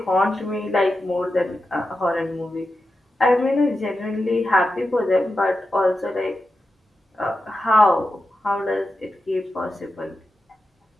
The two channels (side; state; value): both; normal; correlation 0.90